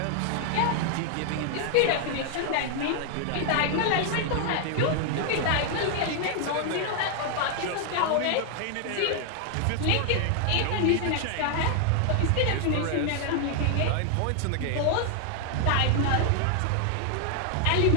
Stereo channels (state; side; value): different; both; correlation 0.00